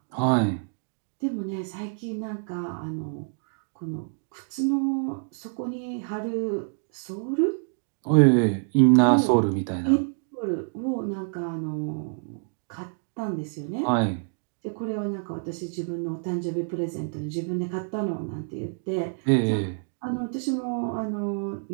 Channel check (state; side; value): silent; left; digital silence